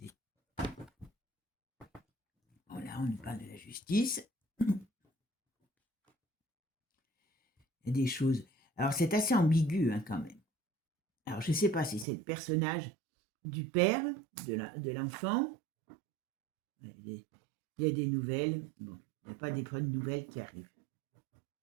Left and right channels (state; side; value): drops out; left; at 12.1 s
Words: Voilà, on nous parle de la justice. Il y a des choses. Alors, c'est assez ambigu, hein, quand même. Alors, je ne sais pas si c'est le personnage du père, de l'enfant. Il y a des nouvelles. Bon, il n'y a pas des bonnes nouvelles qui arrivent.